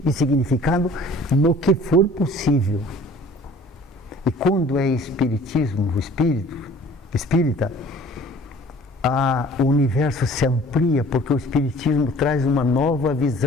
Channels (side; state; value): both; normal; correlation 0.50